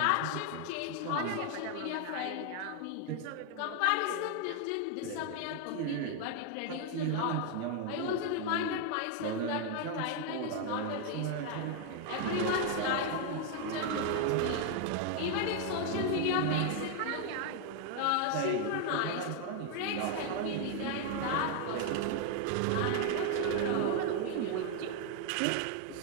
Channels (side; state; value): both; different; correlation 0.00